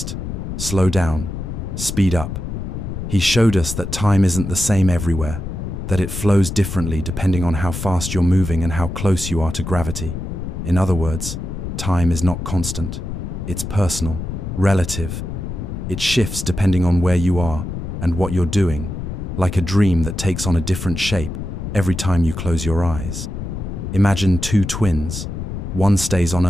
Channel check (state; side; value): noise; left; rumble, 6 dB below the sound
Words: slow down, speed up. He showed us that time isn't the same everywhere, that it flows differently depending on how fast you're moving and how close you are to gravity. In other words, Time is not constant. It's personal, relative. It shifts depending on where you are and what you're doing, like a dream that takes on a different shape every time you close your eyes. Imagine two twins. One stays on